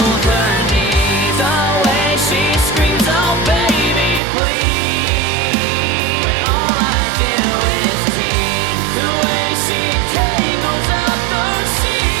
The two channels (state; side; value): drops out; left; at 4.2 s